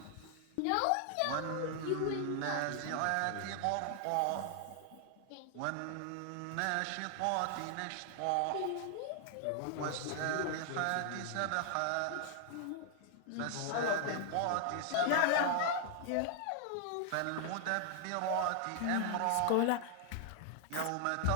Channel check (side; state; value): both; different; correlation 0.00